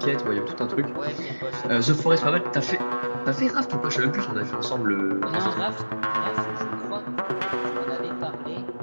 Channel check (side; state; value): both; inverted; correlation -1.00